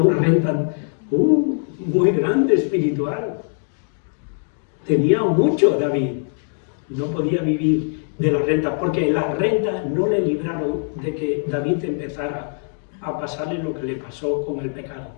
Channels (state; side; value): silent; right; 64 dB below the other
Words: renta muy grande espiritual. Tenía mucho David, no podía vivir de la renta, porque las rentas no le libraron de que David empezara a pasarle lo que le pasó con el pecado.